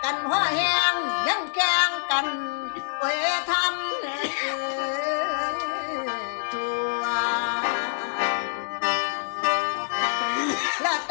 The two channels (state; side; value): silent; right; digital silence